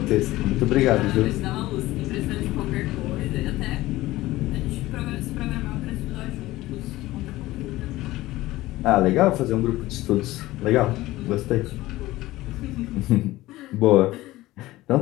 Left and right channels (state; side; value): quieter; right; 17.5 dB